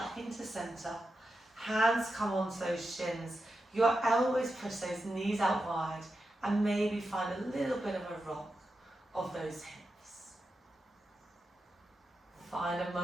into centre. Hands come onto those shins. Your elbows push those knees out wide, and maybe find a little bit of a rock of those hips. Find a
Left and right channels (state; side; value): normal; both; correlation 0.89